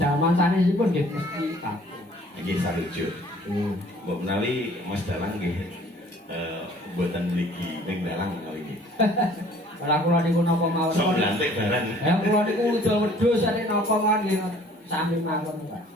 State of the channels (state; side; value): normal; both; correlation 0.54